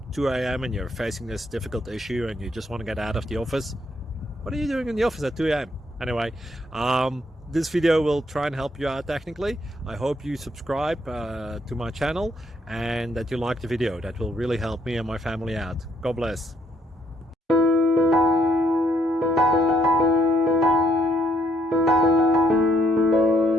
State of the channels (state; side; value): normal; both; correlation 0.71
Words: 2 a.m. and you're facing this difficult issue and you just want to get out of the office. What are you doing in the office at 2 a.m.? Anyway, this video will try and help you out technically. I hope you subscribe to my channel and that you like the video. That will really help me and my family out. God bless.